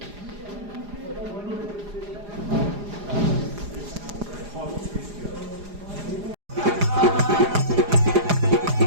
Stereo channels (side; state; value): left; late; 4.9 ms